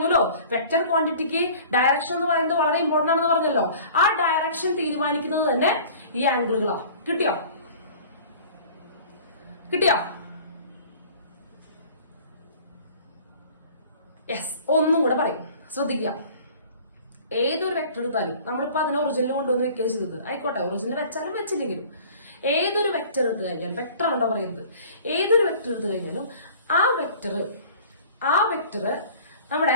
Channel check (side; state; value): both; inverted; correlation -0.46